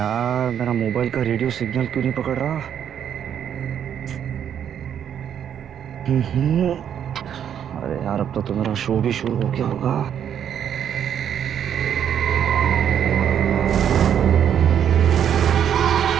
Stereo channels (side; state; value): left; quieter; 9.1 dB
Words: मेरा मोबाइल का रेडियो सिग्नल क्यों नहीं पकड़ रहा? अरे यार, अब तो मेरा शो भी शुरू हो गया होगा।